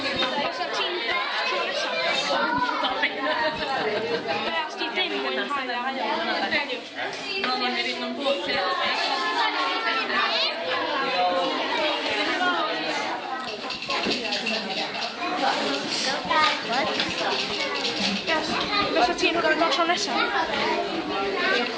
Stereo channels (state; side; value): identical; both; correlation 1.00